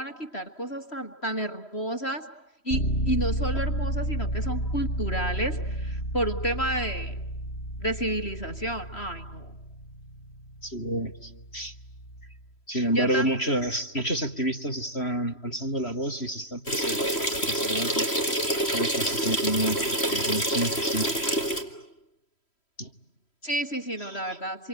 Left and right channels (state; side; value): late; right; 3.1 ms